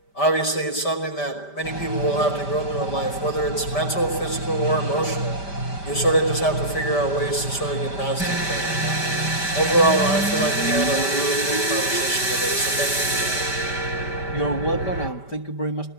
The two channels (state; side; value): late; right; 5.1 ms